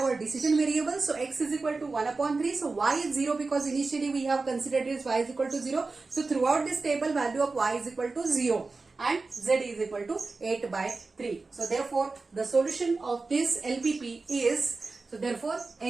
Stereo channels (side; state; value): left; quieter; 3.9 dB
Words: our decision variables. So x is equal to 1 upon 3. So y is 0 because initially we have considered this y is equal to 0. So throughout this table value of y is equal to 0. And Z is equal to 8 by 3. So therefore the solution of this LPP is, so therefore